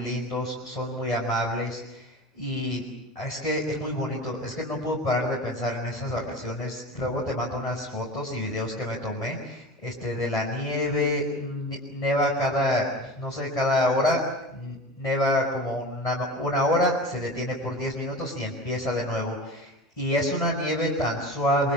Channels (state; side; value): normal; both; correlation 0.33